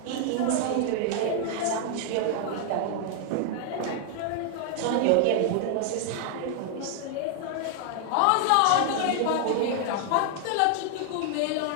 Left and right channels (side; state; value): both; different; correlation 0.00